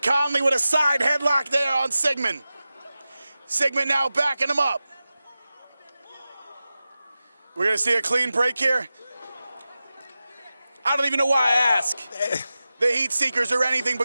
Conley with a side headlock there on Sigmund. Sigmund now backing him up. We're going to see a clean break here. I don't even know why I ask. The Heat Seekers are anything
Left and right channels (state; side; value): inverted; both; correlation -0.94